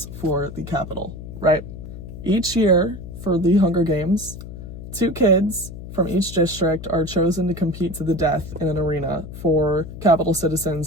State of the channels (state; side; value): noise; left; hum, 11 dB below the sound